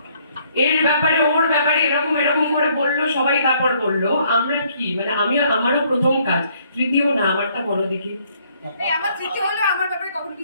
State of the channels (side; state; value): both; inverted; correlation -0.66